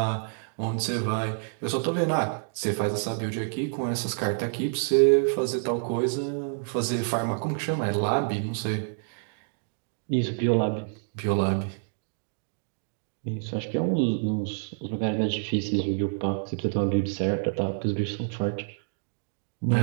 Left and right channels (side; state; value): left; silent; digital silence